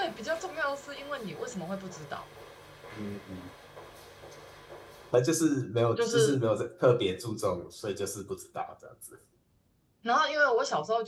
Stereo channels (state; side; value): identical; both; correlation 1.00